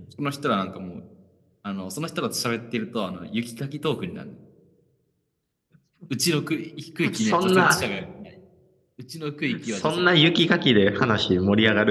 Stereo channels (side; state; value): both; identical; correlation 1.00